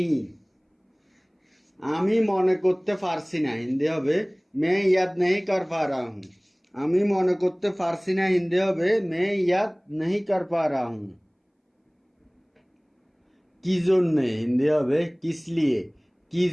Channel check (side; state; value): both; identical; correlation 1.00